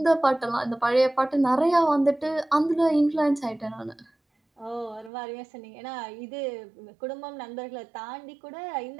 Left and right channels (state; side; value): drops out; left; at 5.1 s